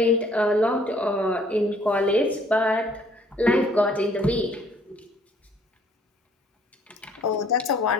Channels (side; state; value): both; normal; correlation 0.60